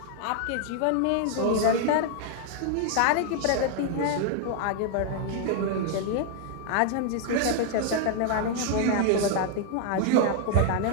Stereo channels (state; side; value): different; both; correlation 0.00